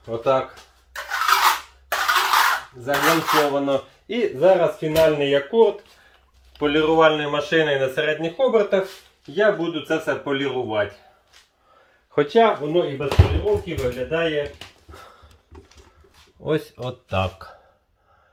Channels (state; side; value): identical; both; correlation 1.00